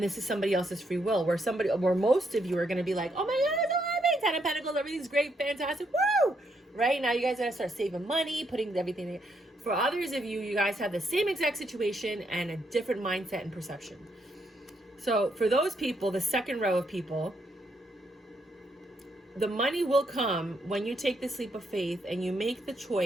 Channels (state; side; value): normal; both; correlation 0.76